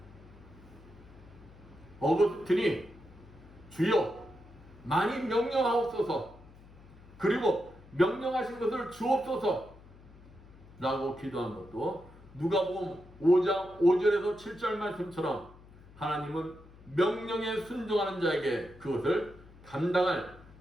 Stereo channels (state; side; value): noise; left; hum, 22 dB below the sound